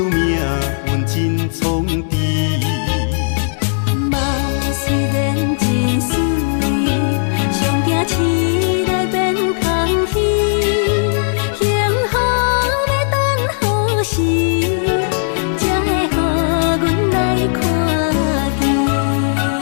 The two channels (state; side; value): silent; right; digital silence